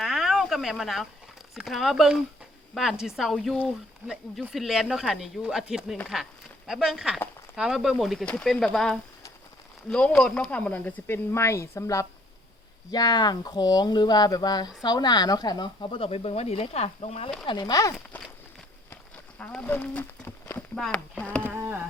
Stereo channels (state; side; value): normal; both; correlation 0.62